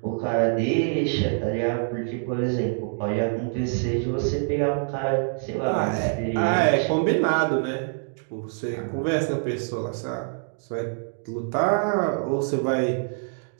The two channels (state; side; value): silent; left; 61 dB below the other